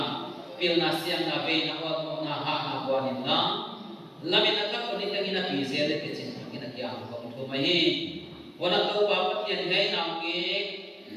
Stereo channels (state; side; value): identical; both; correlation 1.00